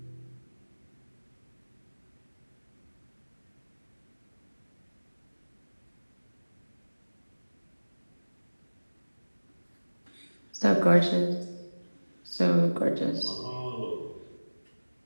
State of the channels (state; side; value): inverted; both; correlation -1.00